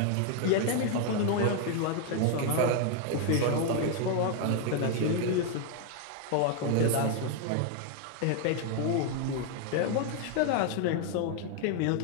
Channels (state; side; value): different; both; correlation 0.00